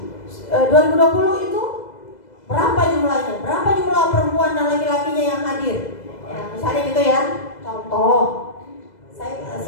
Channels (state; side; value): late; right; 2.0 ms